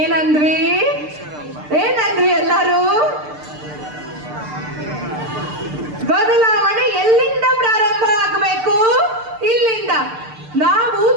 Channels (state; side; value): late; left; 6.7 ms